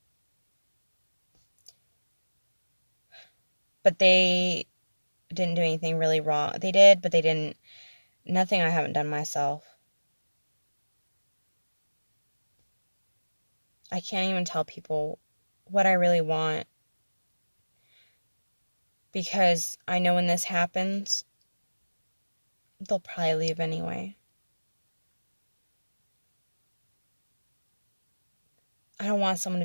But they didn't do anything really wrong. They did, but they didn't. Nothing I haven't done myself. I can't even tell people what I really want, because I know when this happens, they'll probably leave anyway. I don't want someone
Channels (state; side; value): inverted; both; correlation -1.00